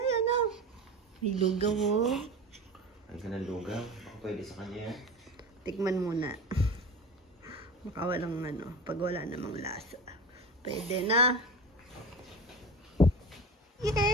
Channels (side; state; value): both; normal; correlation 0.31